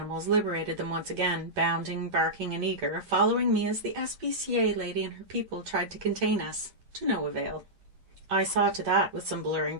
liberated them once again, bounding, barking, and eager, following me as the SPCA lady and her people tried to contain us, to no avail. I saw to that with some blurring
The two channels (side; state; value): left; late; 9.4 ms